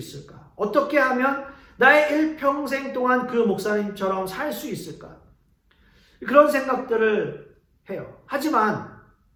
어떻게 하면 나의 일평생 동안 그 목사님처럼 살 수 있을까? 그런 생각들을 해요.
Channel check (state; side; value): identical; both; correlation 1.00